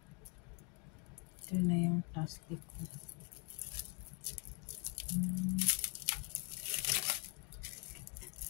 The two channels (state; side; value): quieter; right; 34.9 dB